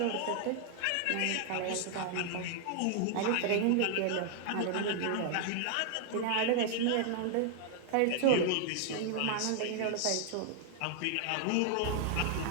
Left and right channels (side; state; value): both; different; correlation 0.00